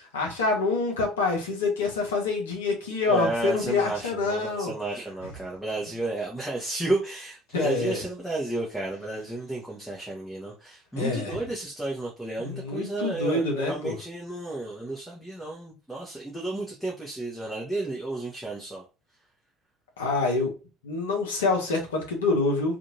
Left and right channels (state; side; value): normal; both; correlation 0.41